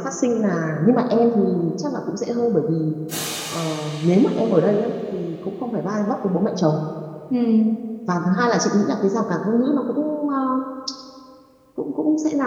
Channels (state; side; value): identical; both; correlation 1.00